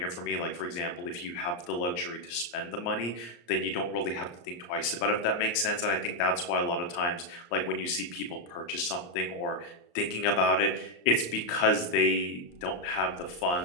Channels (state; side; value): late; right; 34 ms